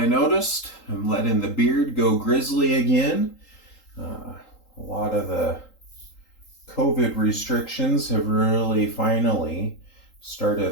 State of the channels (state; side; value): late; right; 3.8 ms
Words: noticed I'm letting the beard go grizzly again. A lot of the COVID restrictions have really finally started